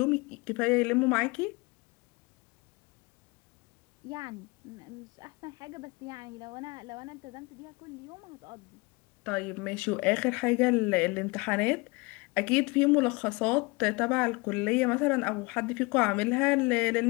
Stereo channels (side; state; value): right; quieter; 26.3 dB